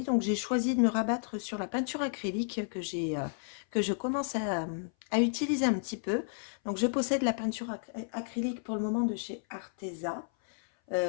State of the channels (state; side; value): silent; right; 56 dB below the other